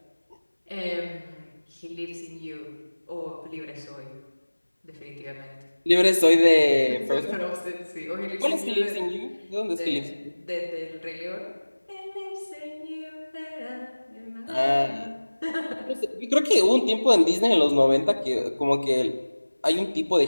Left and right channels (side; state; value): both; inverted; correlation -1.00